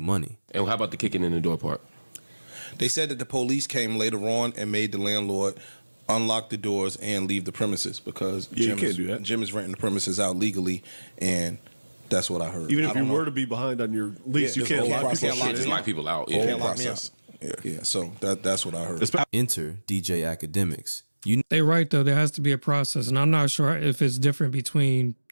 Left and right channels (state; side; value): inverted; both; correlation -1.00